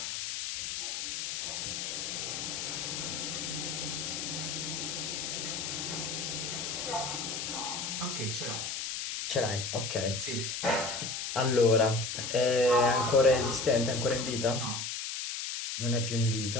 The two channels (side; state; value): left; noise; hiss, 3 dB below the sound